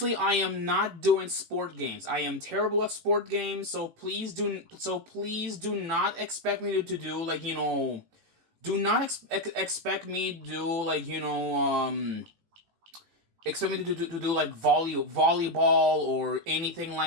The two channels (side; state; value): left; late; 18 ms